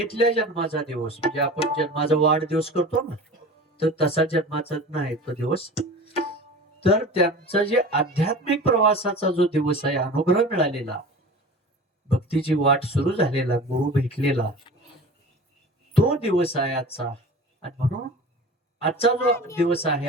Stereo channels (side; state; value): both; normal; correlation 0.37